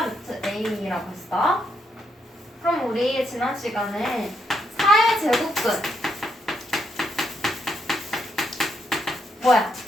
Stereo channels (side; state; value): both; normal; correlation 0.77